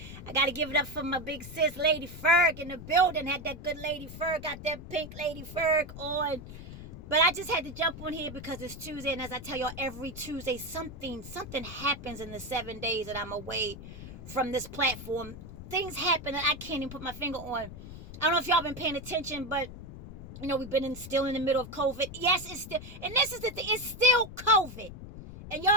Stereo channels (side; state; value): left; noise; rumble, 12 dB below the sound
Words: I gotta give it up for my big sis, Lady Ferg, in the building. Had that good Lady Ferg, got that pink Lady Ferg on. But I just had to jump on here because it's Tuesday, and as I tell y'all, every Tuesday something happens in the 7 days that I'm away from this platform. Things happen that I can't even put my finger on. I don't know if y'all been paying attention, but we've been still in the middle of COVID. Yes, it's still, and this is the thing, it's still COVID. And y'all